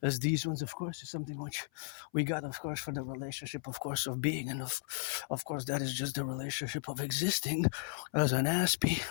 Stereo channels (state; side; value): silent; right; 54 dB below the other